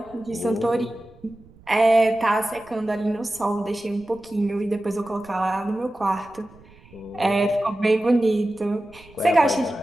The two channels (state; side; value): noise; right; rumble, 25 dB below the sound